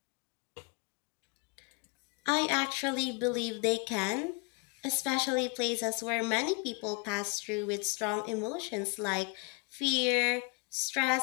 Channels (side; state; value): right; quieter; 29.9 dB